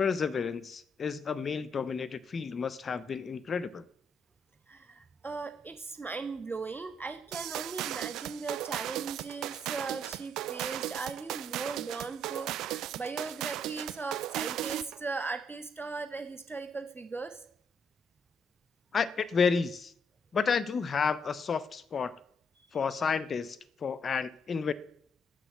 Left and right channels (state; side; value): normal; both; correlation 0.72